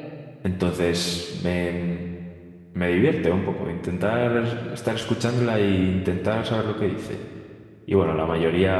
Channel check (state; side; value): identical; both; correlation 1.00